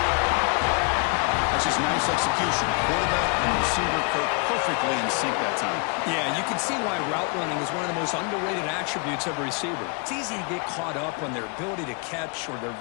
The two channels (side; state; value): right; quieter; 34.2 dB